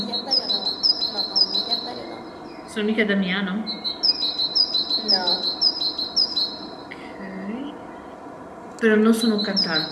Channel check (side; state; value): both; identical; correlation 1.00